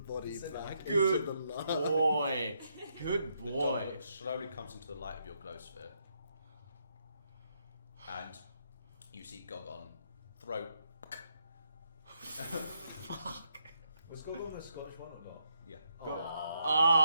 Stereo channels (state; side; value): inverted; both; correlation -0.78